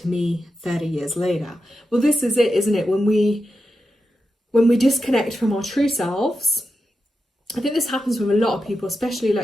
me 30 years later. Well, this is it, isn't it? When we disconnect from our true selves, I think this happens with a lot of people, especially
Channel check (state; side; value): normal; both; correlation 0.89